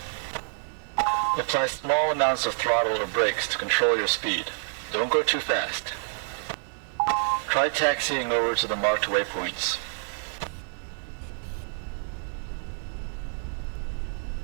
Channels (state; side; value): silent; left; digital silence